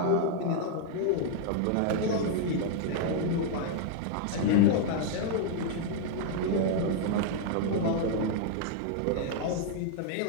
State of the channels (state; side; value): different; both; correlation 0.00